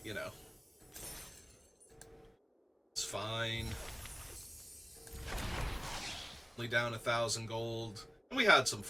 you know. It's fine. Only down 1,000 gold, and we had some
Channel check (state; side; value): identical; both; correlation 1.00